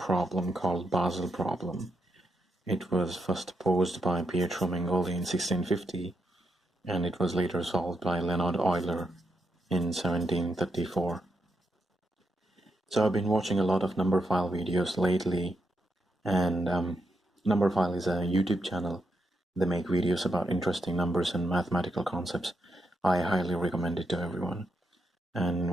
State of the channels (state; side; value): normal; both; correlation 0.81